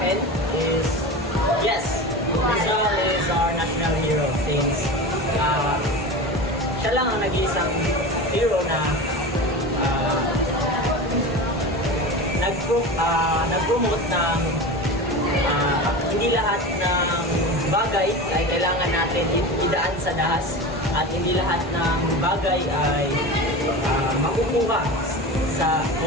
is, yes, Rizal is our national hero since siya lang ang nag-iisang hero na nag-promote ng hindi lahat ng bagay ay kailangan natin idaan sa dahas at hindi lahat ng bagay ay makukuha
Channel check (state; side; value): normal; both; correlation 0.28